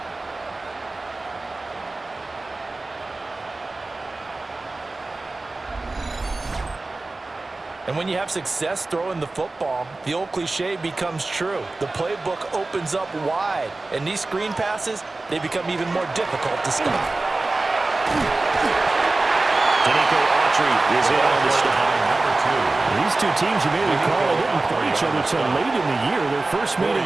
And when you have success throwing the football, the old cliche becomes true. The playbook opens up wide, and these screen passes, they become even more difficult to stop. Danico Autry is in on the stop. These two teams, you may recall, didn't play each other until late in the year. Their first meeting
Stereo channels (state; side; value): quieter; left; 3.2 dB